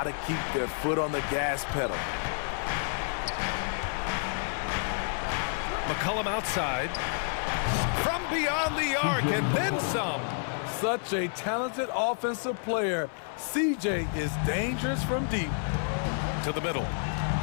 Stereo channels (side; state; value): right; silent; 58 dB below the other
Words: to keep their foot on the gas pedal. McCollum outside. From beyond the arc and then some. Such a talented offensive player. CJ is dangerous from deep. To the middle.